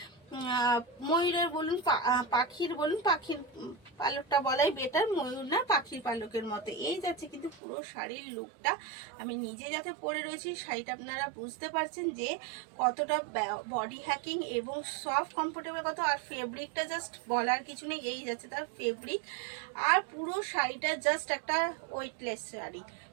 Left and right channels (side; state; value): left; drops out; at 7.6 s